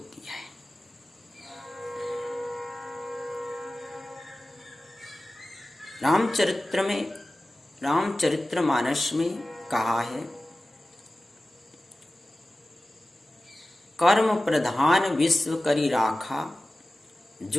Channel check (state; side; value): normal; both; correlation 0.96